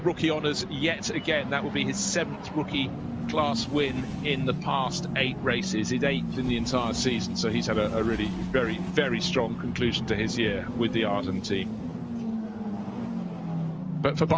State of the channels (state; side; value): identical; both; correlation 1.00